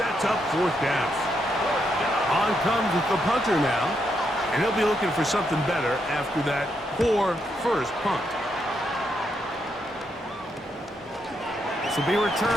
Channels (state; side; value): normal; both; correlation 0.79